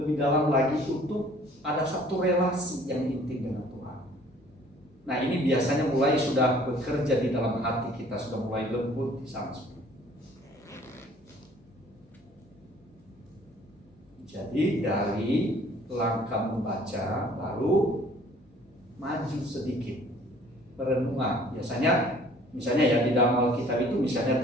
dalam lagi untuk ada satu relasi yang intim dengan Tuhan. Nah ini biasanya mulai sudah bekerja di dalam hati kita, sudah mulai lembut di sana. Jadi dari langkah membaca lalu maju sedikit perenungan. Misalnya ya di dalam Alkitab itu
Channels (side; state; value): both; normal; correlation 0.55